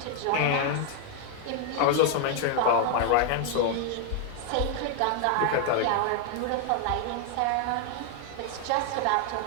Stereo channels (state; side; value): different; both; correlation 0.00